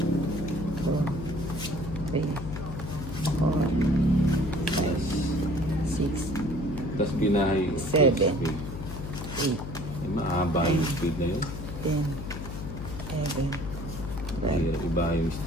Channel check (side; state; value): left; noise; hum, 7 dB below the sound